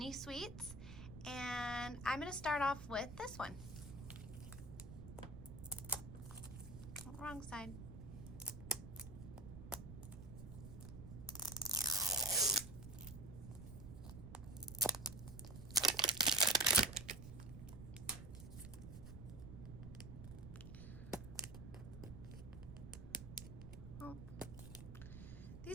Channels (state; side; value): noise; right; rumble, 11 dB below the sound